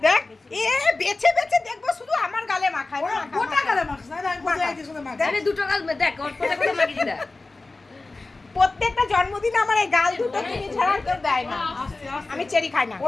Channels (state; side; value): quieter; right; 3.3 dB